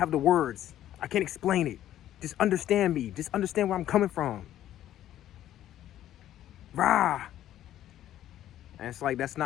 the words. I can't explain it. Just understand me. Just understand where I'm coming from. Rah. And it's like, that's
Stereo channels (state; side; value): quieter; right; 12.3 dB